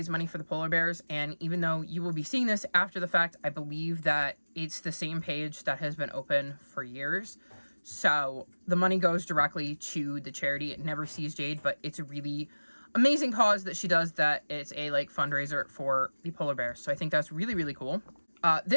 money for the polar bears, and even though you will be seeing this after the fact, I believe that it's the same page that has been open for years. So the money goes directly to the charity. It never sees Jade, but it's a really amazing cause that she does, that it's a fundraiser for the polar bears. So I think that's really, really cool.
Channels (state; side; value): inverted; both; correlation -1.00